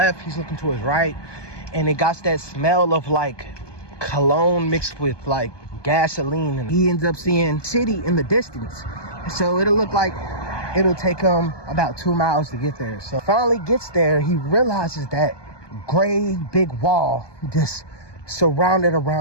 he's looking to his right, and it got that smell of like cologne mixed with like gasoline, and he ends up seeing city in the distance. So it'll look like it'll take him about 2 miles to get there. So finally gets there, he realizes that gray big wall just surrounded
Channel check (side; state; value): right; late; 1.2 ms